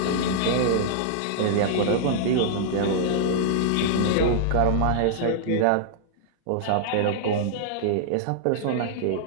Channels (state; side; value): different; both; correlation -0.01